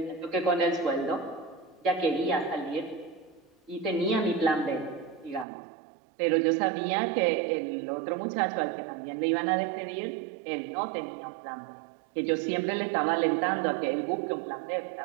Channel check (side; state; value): left; drops out; at 5.5 s